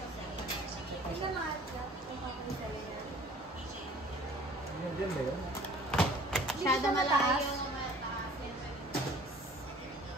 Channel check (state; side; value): normal; both; correlation 0.50